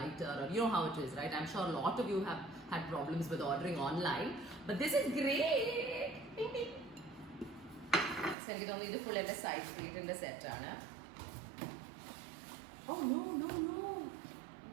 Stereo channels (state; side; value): drops out; left; at 8.3 s